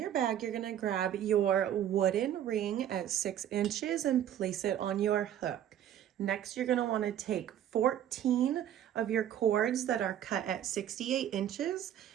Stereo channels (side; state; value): left; quieter; 10.7 dB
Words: bag, you're going to grab your wooden ring at 6 inches and place it on your hook. Next, you're going to want to take 14 of your cords that are cut at 68 inches,